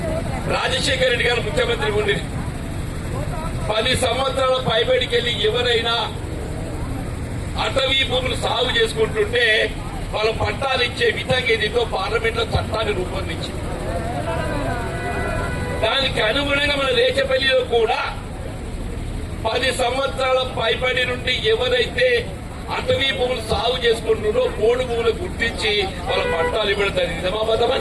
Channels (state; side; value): identical; both; correlation 1.00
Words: రాజశేఖర రెడ్డి గారు ముఖ్యమంత్రి ఉండి 10 సంవత్సరాల పైబడికి వెళ్ళి ఎవరైనా అటవీ భూములు సాగు చేసుకుంటుంటే వాళ్ళ పట్టాలు ఇచ్చే విధంగా ఏదితో పార్లమెంట్ లో చట్టాన్ని రూపొందించింది. దానికి అనుగుణంగా మన రేచపల్లిలో కూడా 10 సంవత్సరాల పైబడి నుండి ఎవరైతే అటవీ భూములు సాగు చేసుకుంటున్నారో పోడు భూములు గుర్తించి వాళ్ళ పట్టాలు ఇవ్వడం జరిగింది.